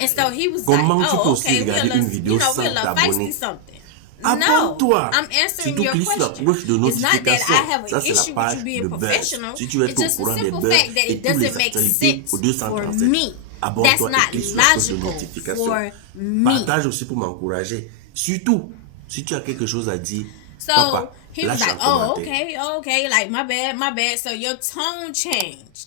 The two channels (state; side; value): different; both; correlation 0.00